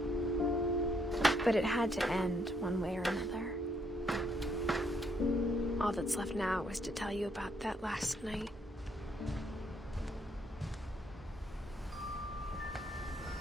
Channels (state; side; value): normal; both; correlation 0.72